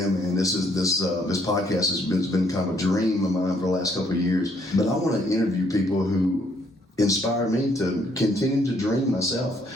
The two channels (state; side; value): normal; both; correlation 0.68